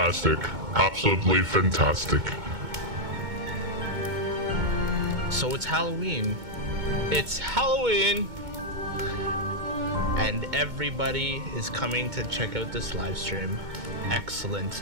Absolutely fantastic. So it's Halloween. It's Halloween. And everybody is coming to check out this live stream.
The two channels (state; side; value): late; left; 2.2 ms